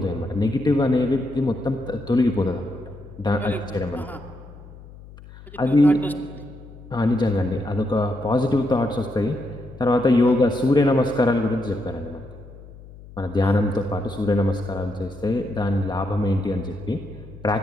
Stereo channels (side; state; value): left; noise; hum, 19 dB below the sound